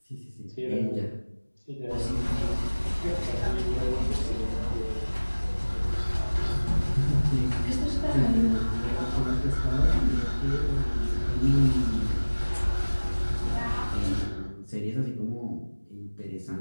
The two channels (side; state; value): both; inverted; correlation -1.00